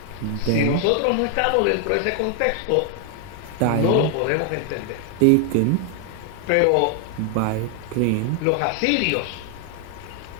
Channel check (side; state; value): both; different; correlation 0.00